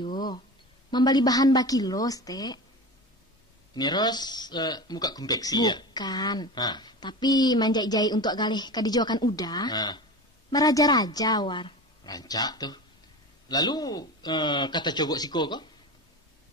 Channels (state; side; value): normal; both; correlation 0.30